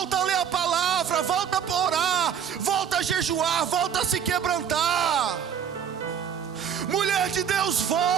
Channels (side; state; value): left; quieter; 8.3 dB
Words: a ler a palavra. Volta a orar. Volta a jejuar. Volta a se quebrantar. Mulher de Deus,